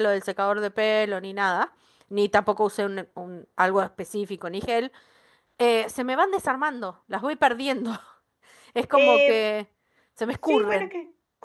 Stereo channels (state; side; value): identical; both; correlation 1.00